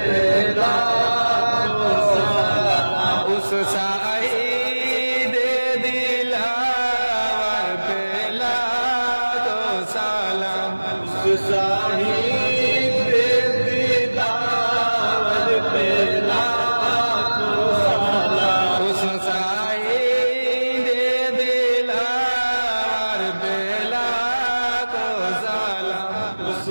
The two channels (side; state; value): both; inverted; correlation -1.00